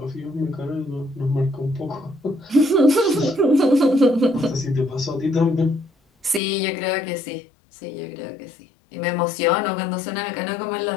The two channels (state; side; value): drops out; right; at 6.4 s